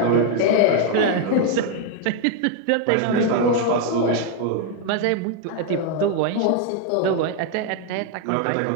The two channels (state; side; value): different; both; correlation 0.01